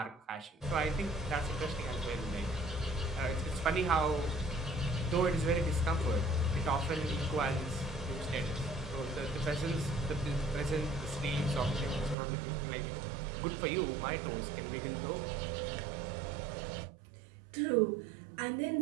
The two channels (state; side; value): drops out; left; at 12.2 s